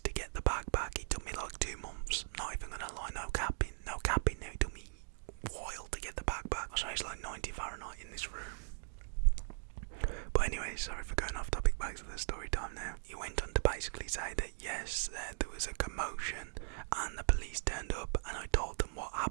to get the bag back. It took me like 2 months. Not even gonna lie, no capping now. It took me a while to get the bag back. So it's like 90 Fahrenheit in this room. But anyway, sorry for going off topic, back to the story time now. He went on to basically say that yes, there was a commotion and the police turned up, and I told them what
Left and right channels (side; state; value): left; silent; digital silence